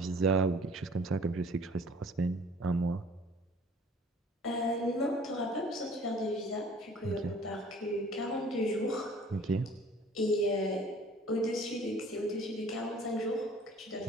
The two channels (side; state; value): both; normal; correlation 0.51